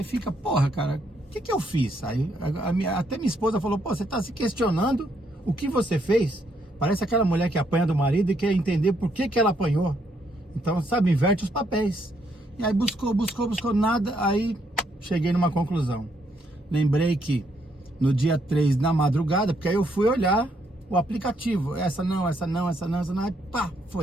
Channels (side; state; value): both; normal; correlation 0.73